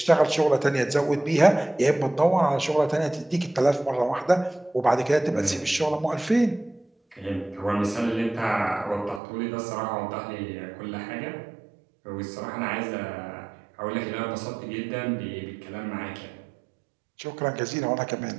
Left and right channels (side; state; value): left; drops out; at 9.2 s